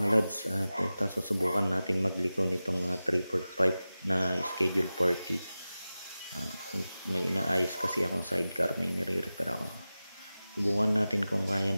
lods, ito susubukan natin magliko nitong 345 na schedule 40. May inaayos kasi akong sidecar, may nire-repair ako. Subukan natin kung kaya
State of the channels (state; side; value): inverted; both; correlation -0.95